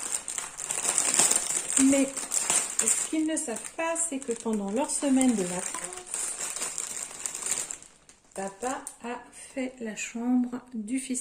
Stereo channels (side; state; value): both; identical; correlation 1.00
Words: Mais ce qu'ils ne savent pas, c'est que pendant leur semaine de vacances, papa a fait la chambre du